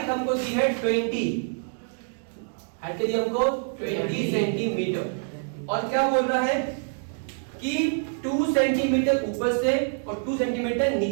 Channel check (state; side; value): silent; left; digital silence